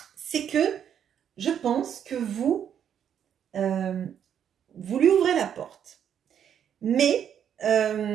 c'est que je pense que vous lui ouvrez la porte. Mais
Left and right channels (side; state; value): left; quieter; 8.9 dB